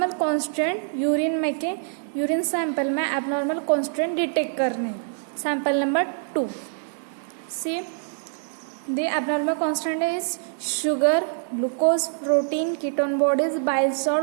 कांस्टेंट यूरिन सैंपल में एबनॉर्मल कांस्टेंट डिटेक्ट करने. Sample number 2. See the abnormal constant is sugar, glucose, protein, ketone bodies, bile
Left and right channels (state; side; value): silent; left; 62 dB below the other